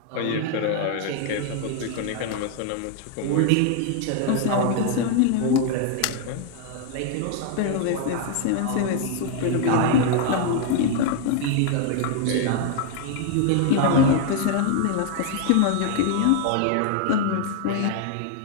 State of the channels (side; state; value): both; different; correlation 0.00